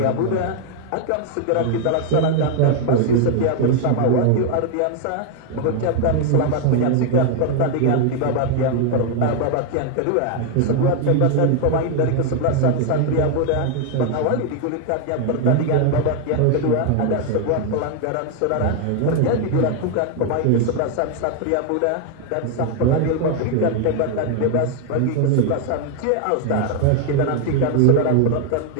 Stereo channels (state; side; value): different; both; correlation 0.00